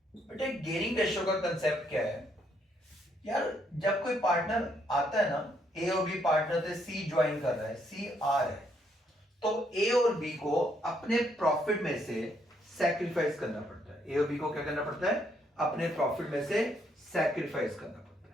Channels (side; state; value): both; normal; correlation 0.72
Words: बेटे गेनिंग रेशियो का कंसेप्ट क्या है यार, जब कोई पार्टनर आता है ना, ए और बी पार्टनर से सी ज्वाइन कर रहा है, सी आर है, तो ए और बी को अपने प्रॉफिट में से सैक्रिफाइस करना पड़ता है। ए और बी को क्या करना पड़ता है, अपने प्रॉफिट में से सैक्रिफाइस करना पड़ता